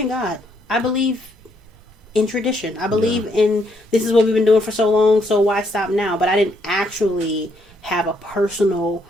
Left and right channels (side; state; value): both; normal; correlation 0.73